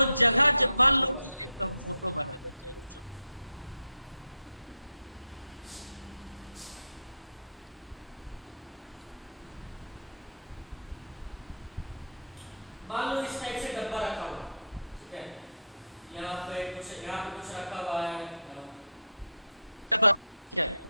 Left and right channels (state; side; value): inverted; both; correlation -0.63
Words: जगह, जब मान लो कि एक हम फोटो बना देते हैं जो, क्या है,